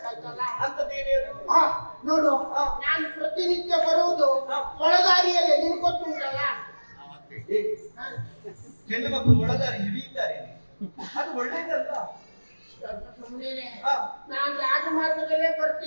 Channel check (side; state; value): both; inverted; correlation -1.00